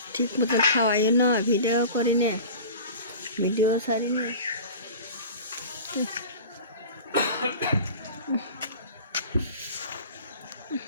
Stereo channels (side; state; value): both; inverted; correlation -0.38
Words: ঠিক মতন খাওয়াই না, ভিডিও করি না, ভিডিও ছাড়ি না।